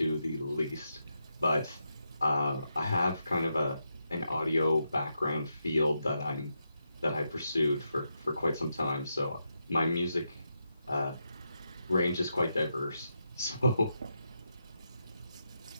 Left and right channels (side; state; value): both; inverted; correlation -0.84